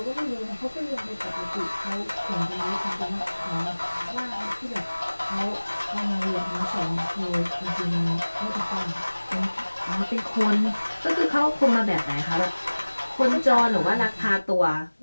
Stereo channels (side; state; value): both; inverted; correlation -1.00